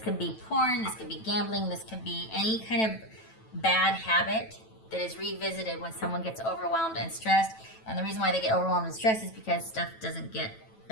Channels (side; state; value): right; late; 9.1 ms